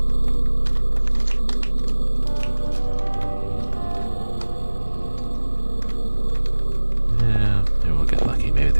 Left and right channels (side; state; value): both; inverted; correlation -1.00